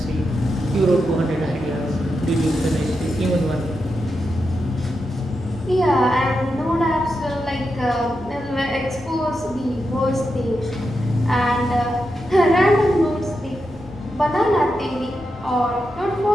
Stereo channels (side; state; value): both; normal; correlation 0.87